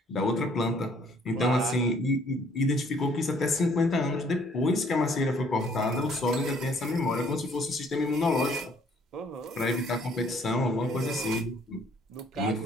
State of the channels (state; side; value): normal; both; correlation 0.61